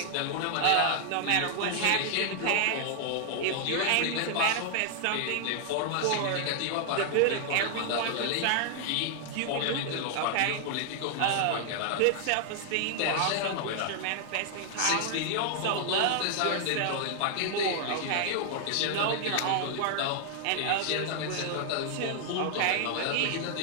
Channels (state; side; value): different; both; correlation 0.00